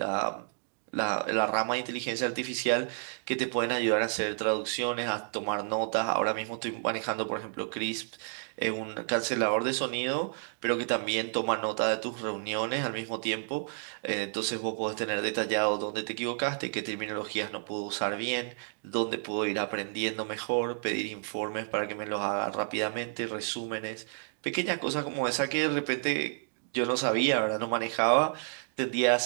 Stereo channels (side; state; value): left; silent; digital silence